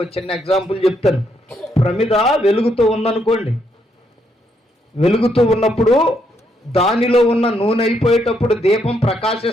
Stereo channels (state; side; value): normal; both; correlation 0.75